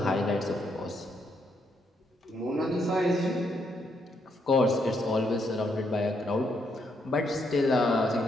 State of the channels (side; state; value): both; normal; correlation 0.76